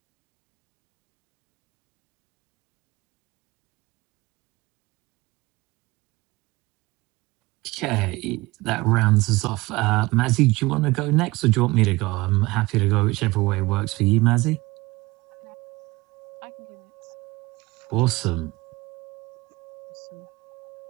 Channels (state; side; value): quieter; left; 21.5 dB